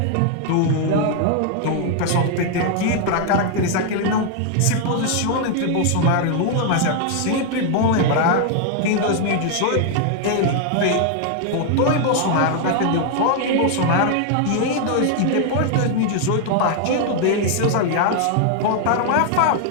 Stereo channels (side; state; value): both; different; correlation 0.00